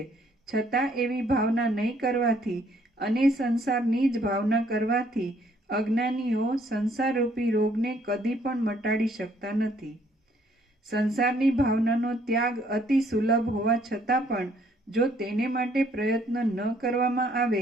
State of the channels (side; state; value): both; normal; correlation 0.65